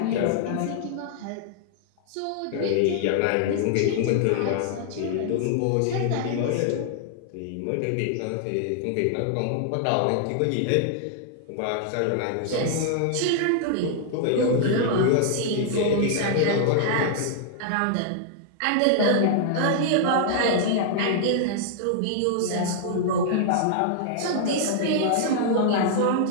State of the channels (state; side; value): different; both; correlation -0.01